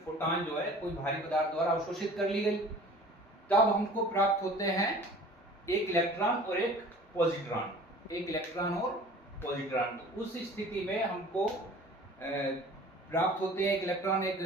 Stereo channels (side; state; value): both; normal; correlation 0.46